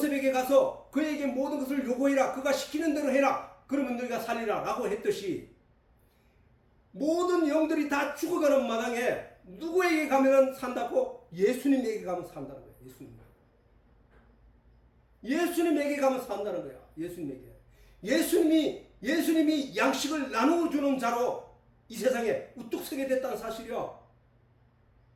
가서 그에게 모든 것을 요구해라. 그가 시키는 대로 해라. 그러면 너희가 살리라 라고 했듯이 모든 영들이 다 죽어가는 마당에 누구에게 가면 산다고? 예수님에게 가면 산다는 거예요. 예수님에게 가면 산다는 거야. 예수님이 양식을 나누어주는 자로 이 세상에 우뚝 서게 됐다는 사실이야.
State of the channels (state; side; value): identical; both; correlation 1.00